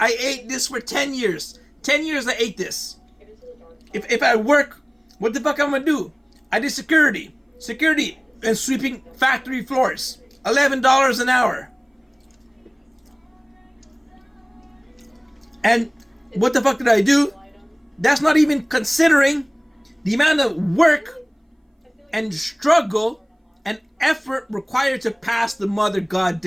ate this for 10 years. 10 years I ate this. If I work, what the fuck I'm gonna do? I did security and sweeping factory floors, $11 an hour. And what the fuck did I do? That's not even considering the amount of work and struggle and effort required to pass the mother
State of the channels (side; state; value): both; identical; correlation 1.00